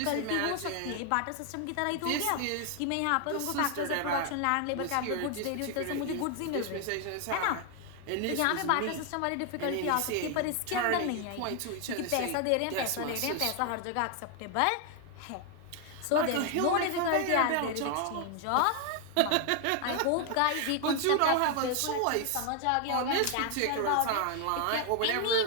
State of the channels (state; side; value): different; both; correlation 0.00